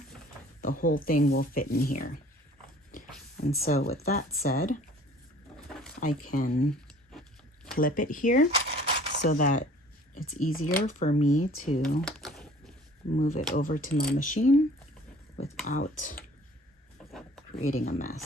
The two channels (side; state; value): both; normal; correlation 0.51